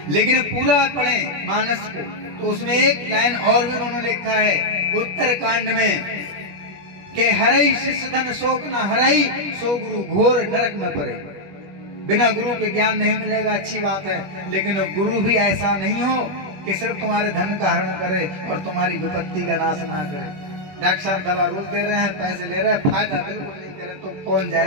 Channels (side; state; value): left; late; 20 ms